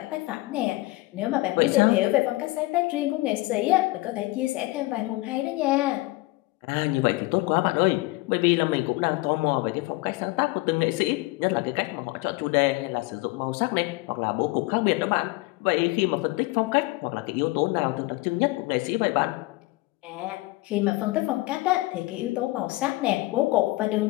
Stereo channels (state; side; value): quieter; right; 21.2 dB